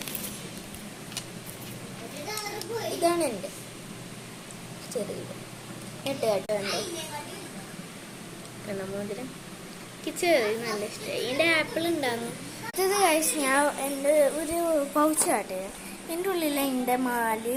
ഇതാണ് എൻ്റെ ചെറിയത്. മോതിരം ചെറിയ നല്ല ഇഷ്ടമായി. എൻ്റെ ആപ്പിൾ ഉണ്ടായിരുന്നു. ഇത് കഴിച്ച് ഞാൻ എൻ്റെ ഒരു പൗച്ച് കാട്ടിയത്. എൻ്റെ ഉള്ളിൽ എൻ്റെ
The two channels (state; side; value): identical; both; correlation 1.00